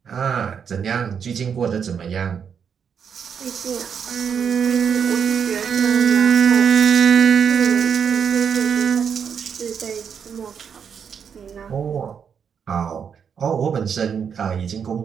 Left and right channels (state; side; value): quieter; left; 7.1 dB